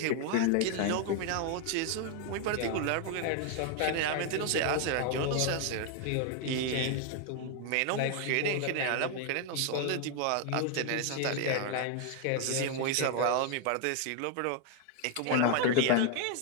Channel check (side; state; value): both; different; correlation 0.00